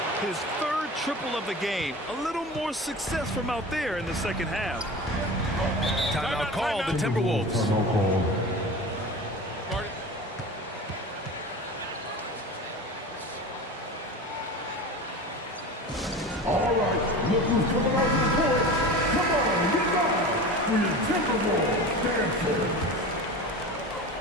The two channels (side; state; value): both; normal; correlation 0.32